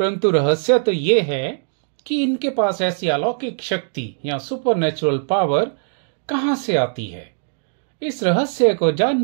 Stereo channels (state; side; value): silent; left; digital silence